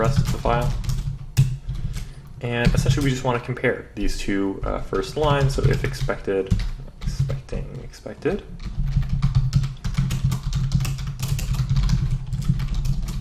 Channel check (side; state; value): both; identical; correlation 1.00